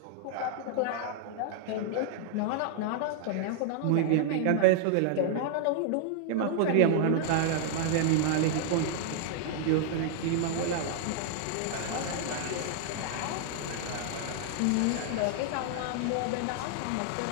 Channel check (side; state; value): both; different; correlation -0.01